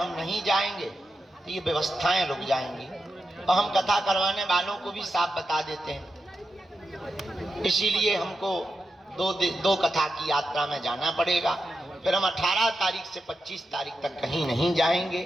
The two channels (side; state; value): both; normal; correlation 0.88